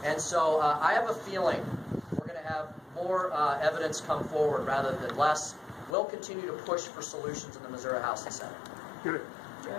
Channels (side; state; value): right; drops out; at 6.0 s